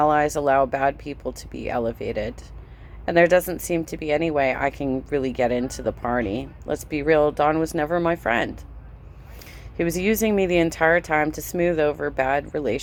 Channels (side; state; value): both; identical; correlation 1.00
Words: allow bad people to be elevated. And there doesn't seem to be any way I can really get into the party. Let's be real, Don was never my friend. He was using me the entire time to smooth over bad